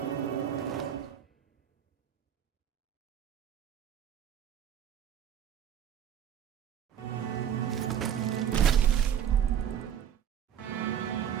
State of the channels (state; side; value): quieter; left; 9.3 dB